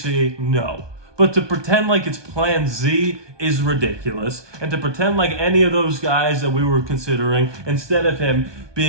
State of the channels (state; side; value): late; left; 1.2 ms